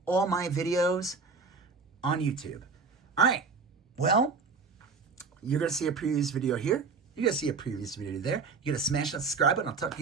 all my videos on YouTube. All right, well, you're going to see a previous video here. You're going to see a previous video there. You're going to smash that subscribe button. I'll talk to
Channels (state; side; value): quieter; left; 4.8 dB